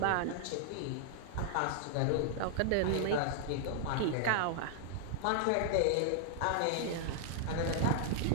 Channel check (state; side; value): different; both; correlation -0.01